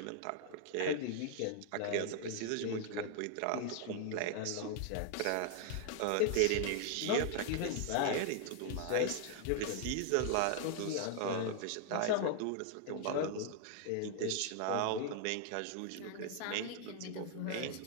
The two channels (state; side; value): different; both; correlation 0.00